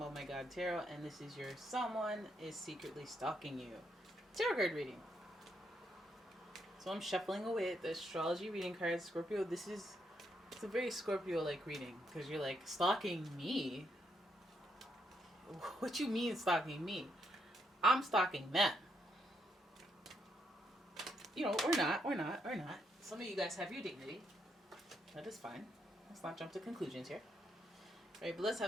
and this is your someone is secretly stalking you tarot card reading. So I'm shuffling away at the astrology reading cards. Scorpio, it's a very Scorpio-like reading because you're like, stalking me? What you mean stalking me? I'm stalking them. Or not. Some of you guys have your dignity. That is fine. Let's not jump to conclusions here. All right, but let's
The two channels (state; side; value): normal; both; correlation 0.77